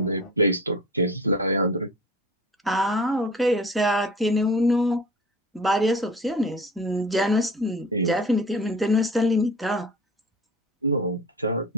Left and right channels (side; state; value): both; normal; correlation 0.39